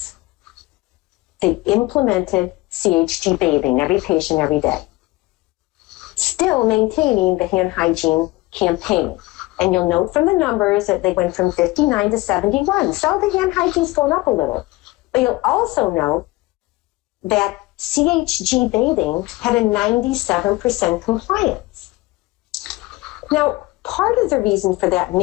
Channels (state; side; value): quieter; right; 20.6 dB